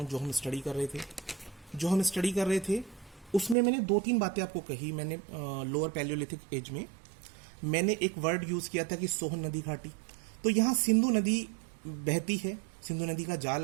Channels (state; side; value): drops out; left; at 3.6 s